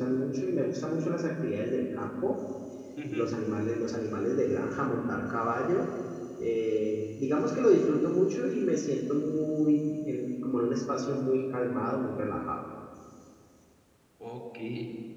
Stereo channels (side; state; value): both; identical; correlation 1.00